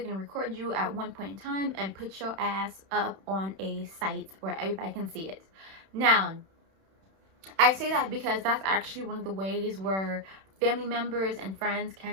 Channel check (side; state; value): left; late; 31 ms